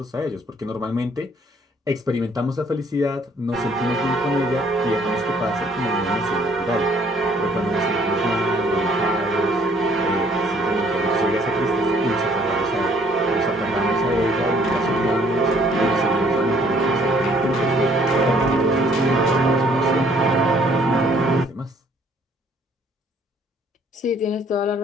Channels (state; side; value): normal; both; correlation 0.62